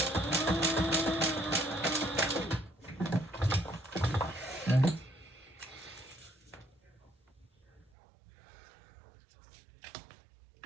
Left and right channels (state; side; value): drops out; left; at 7.9 s